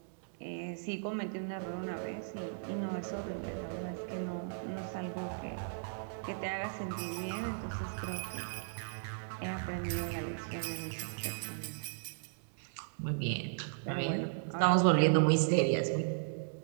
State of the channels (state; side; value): silent; left; digital silence